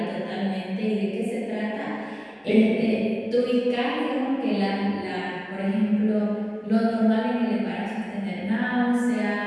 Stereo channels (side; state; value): both; identical; correlation 1.00